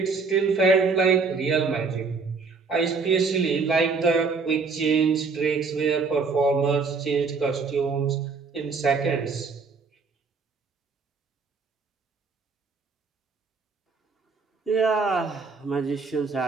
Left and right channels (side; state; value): left; quieter; 4.6 dB